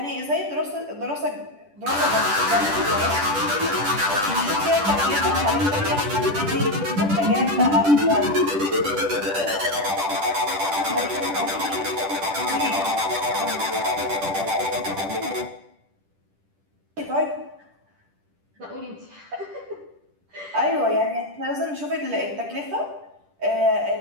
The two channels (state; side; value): late; left; 10 ms